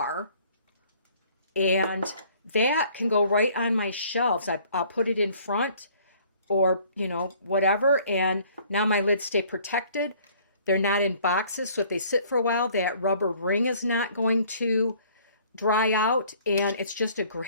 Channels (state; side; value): inverted; both; correlation -0.57